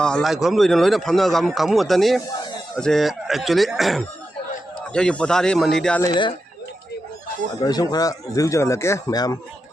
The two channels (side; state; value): both; normal; correlation 0.89